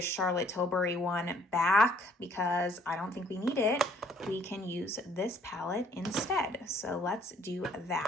Charlotte Tilbury one back because I don't think we need it. We can use this palette instead. So let's do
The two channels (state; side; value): normal; both; correlation 0.62